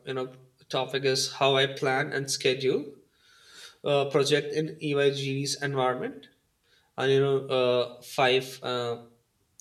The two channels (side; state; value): both; identical; correlation 1.00